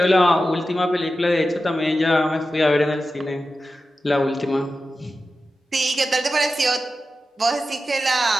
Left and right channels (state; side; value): normal; both; correlation 0.92